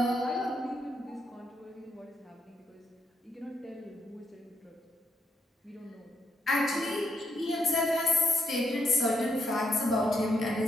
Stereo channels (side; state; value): both; normal; correlation 0.78